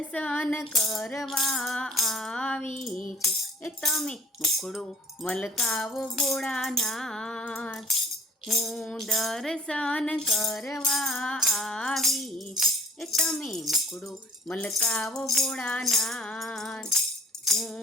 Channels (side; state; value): both; normal; correlation 0.49